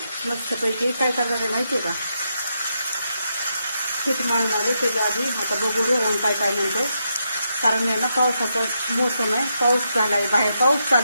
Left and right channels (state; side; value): inverted; both; correlation -0.82